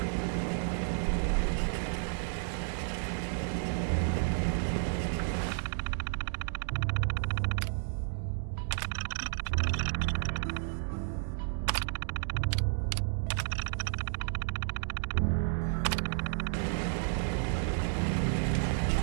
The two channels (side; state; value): left; silent; digital silence